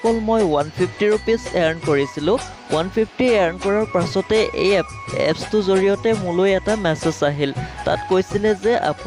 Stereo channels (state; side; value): identical; both; correlation 1.00